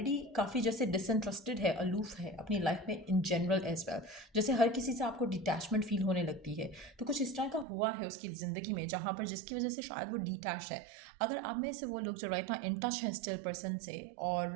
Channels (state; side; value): drops out; left; at 7.7 s